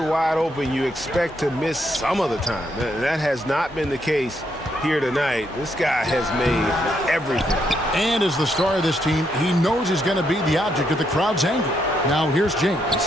wide open, you expect to miss some of the time. That has not been the case here tonight. This guy has made everything. And as the star of this team, he knows he's going to be the object of the crowd's anger. Now here's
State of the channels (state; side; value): normal; both; correlation 0.77